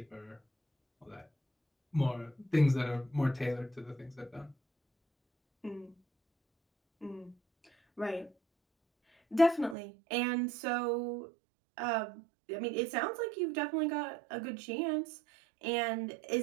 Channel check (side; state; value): left; drops out; at 9.8 s